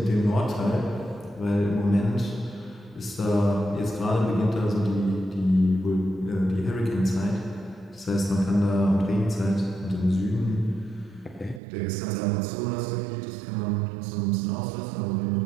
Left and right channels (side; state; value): left; drops out; at 11.6 s